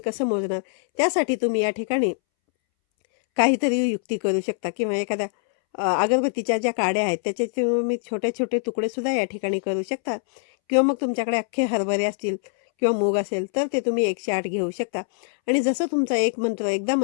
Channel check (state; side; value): silent; right; 63 dB below the other